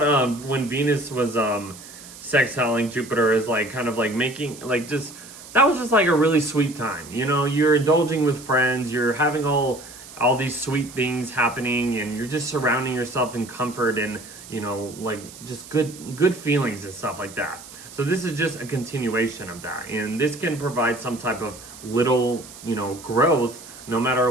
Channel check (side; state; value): right; noise; hiss, 17 dB below the sound